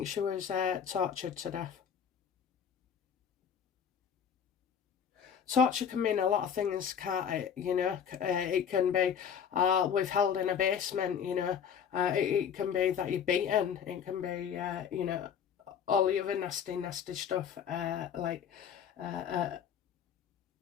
she was tortured to death. torture can mean a lot of things, can't it? You know, it can be withheld in a basement. You know, it can be that you're beaten. It can be you know, all the other nasty stuff, like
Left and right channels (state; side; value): quieter; right; 7.8 dB